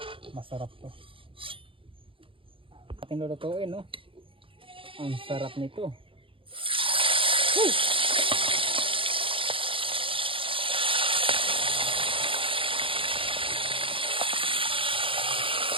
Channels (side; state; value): left; late; 0.25 ms